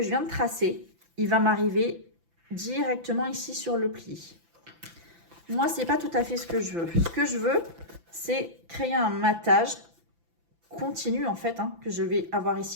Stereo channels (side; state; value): left; late; 5.9 ms